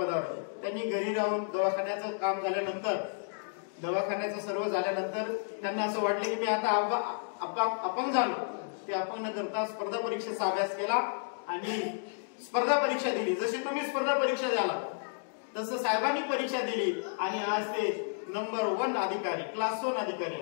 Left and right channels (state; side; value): silent; right; digital silence